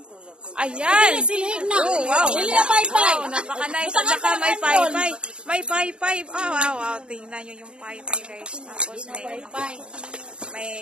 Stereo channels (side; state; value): left; late; 0.054 ms